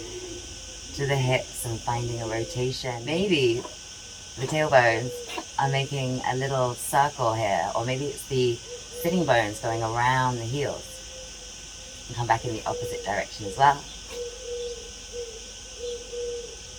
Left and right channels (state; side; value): identical; both; correlation 1.00